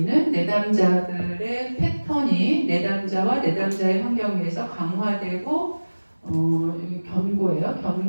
내담자들의 패턴이 내담자와 내담자의 환경에서 강화되고 견고해요.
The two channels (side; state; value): both; inverted; correlation -1.00